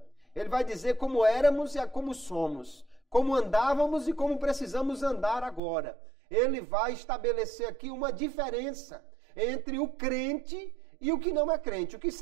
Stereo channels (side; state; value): left; drops out; at 5.6 s